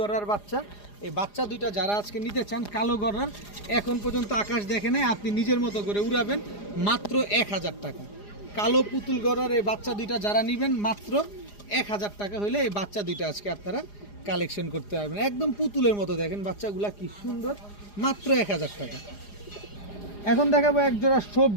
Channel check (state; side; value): late; right; 4.9 ms